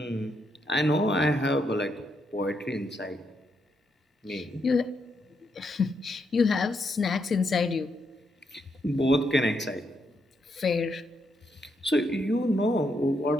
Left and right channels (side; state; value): both; normal; correlation 0.79